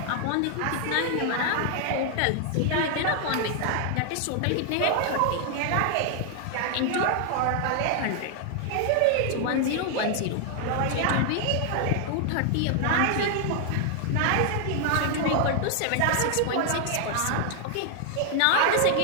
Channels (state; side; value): different; both; correlation 0.00